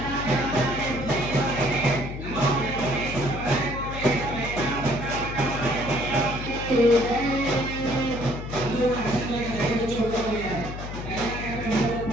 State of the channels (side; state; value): left; noise; hum, 8 dB below the sound